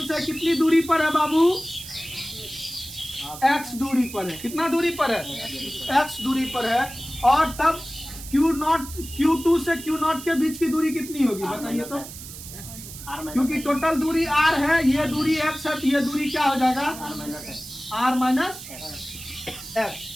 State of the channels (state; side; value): noise; right; hiss, 13 dB below the sound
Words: से कितनी दूरी पर है बाबू? x दूरी पर है। कितना दूरी पर है? x दूरी पर है। और तब Q2 से Q0 के बीच की दूरी कितनी होगी बताइए तो? क्योंकि टोटल दूरी r है, ये दूरी x है, तो ये दूरी क्या हो जाएगा? r minus x।